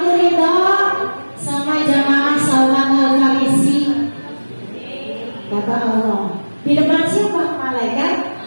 ridho sama jamaah Salman Al-Farisi, kata Allah. Di depan siapa? Malaikat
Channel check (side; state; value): both; inverted; correlation -1.00